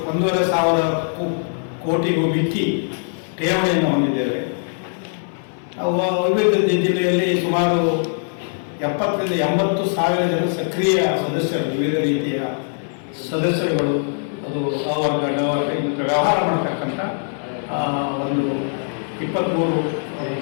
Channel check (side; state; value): right; silent; 65 dB below the other